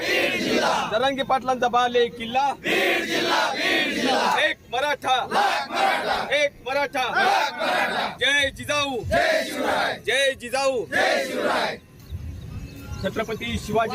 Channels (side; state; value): both; identical; correlation 1.00